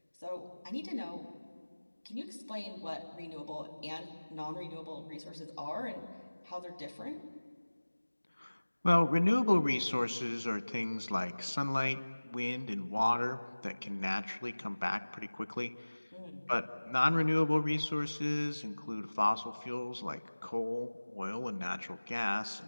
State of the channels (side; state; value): both; inverted; correlation -1.00